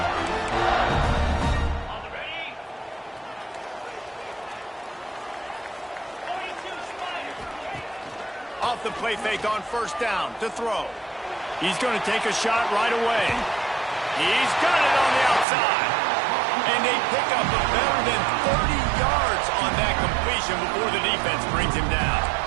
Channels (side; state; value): left; drops out; at 15.5 s